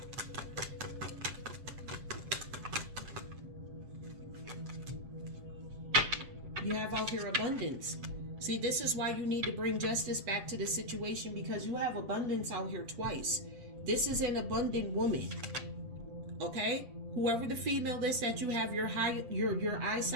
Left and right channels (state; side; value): late; left; 8.1 ms